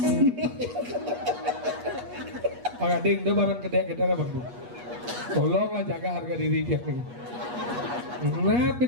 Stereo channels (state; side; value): late; left; 8.3 ms